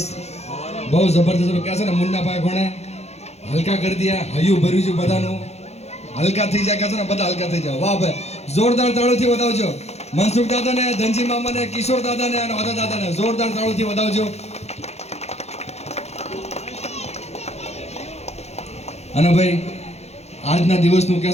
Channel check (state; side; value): late; right; 0.31 ms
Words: કહે છે ને મુન્નાભાઈ કોણે હલકા કરી દિયા, હૈયું ભર્યું છે બધાનું, હલકા થઈ જાય કહે છે ને બધા હલકા થઈ જાય. વાહ ભાઈ, જોરદાર તાળીઓથી વધાવજો મનસુખ દાદાને, ધનજી મામાને, કિશોર દાદાને અને વાદા દાદાને જોરદાર તાળીઓથી વધાવજો. અને ભાઈ આજના દિવસનું કહે